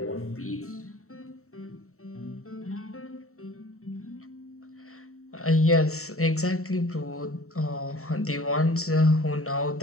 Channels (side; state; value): right; late; 0.63 ms